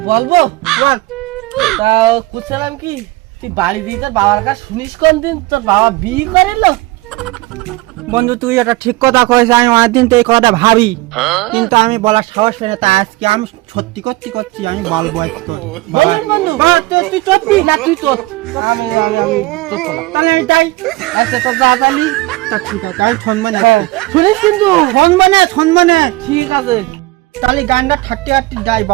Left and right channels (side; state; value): left; quieter; 20.6 dB